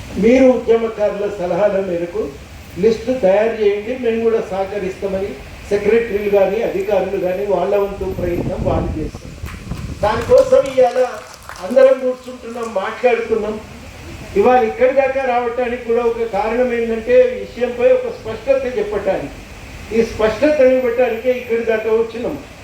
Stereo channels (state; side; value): identical; both; correlation 1.00